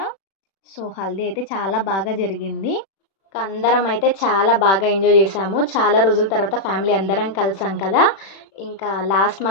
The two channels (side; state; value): right; late; 36 ms